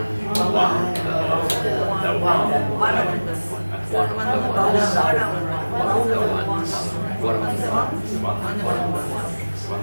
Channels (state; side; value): inverted; both; correlation -1.00